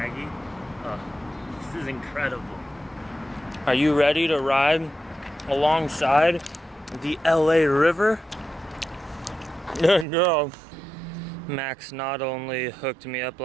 Oh, this is incredible. Are you ready to ride alongside the LA River? No. Max not only hooked me up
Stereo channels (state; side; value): drops out; left; at 10.1 s